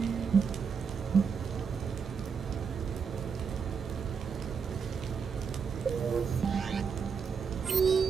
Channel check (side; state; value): left; quieter; 6.1 dB